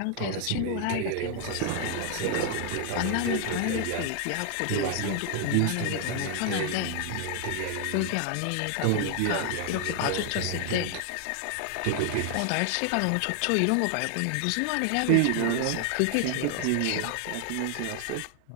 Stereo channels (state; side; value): different; both; correlation 0.00